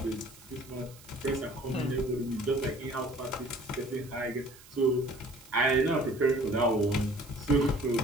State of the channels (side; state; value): right; noise; hiss, 22 dB below the sound